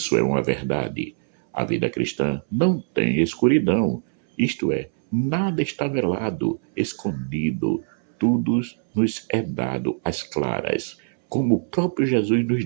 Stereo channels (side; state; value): left; silent; 63 dB below the other